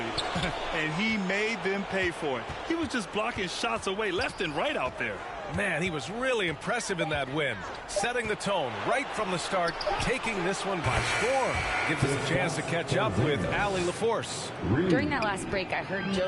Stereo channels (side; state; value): both; identical; correlation 1.00